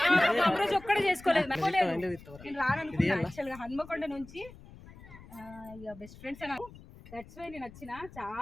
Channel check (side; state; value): left; noise; rumble, 19 dB below the sound